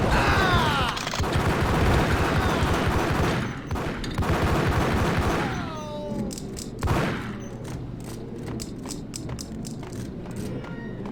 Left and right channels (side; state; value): both; identical; correlation 1.00